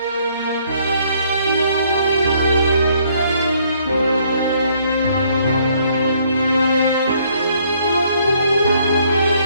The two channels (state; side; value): inverted; both; correlation -0.65